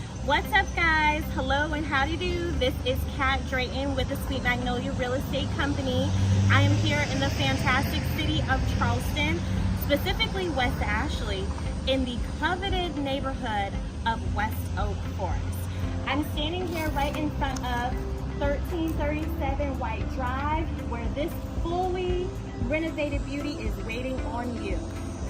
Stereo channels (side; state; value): both; identical; correlation 1.00